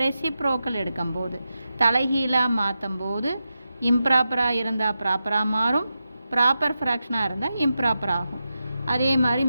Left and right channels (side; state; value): both; inverted; correlation -0.90